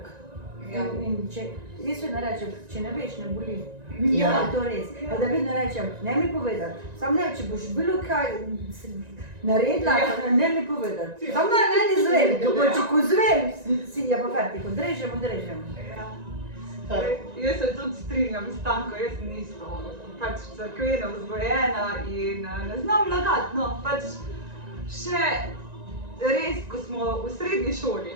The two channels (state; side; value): late; left; 1.9 ms